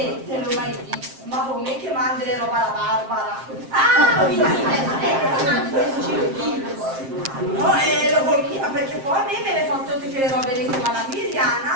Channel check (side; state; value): left; late; 7.5 ms